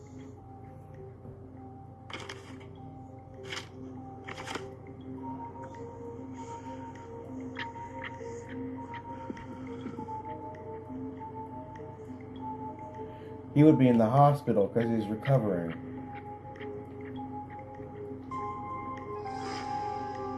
He would be in the hospital because he's recovering.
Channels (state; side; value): identical; both; correlation 1.00